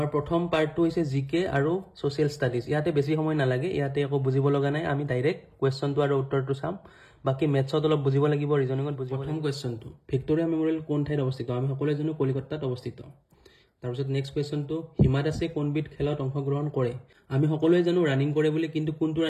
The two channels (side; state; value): both; identical; correlation 1.00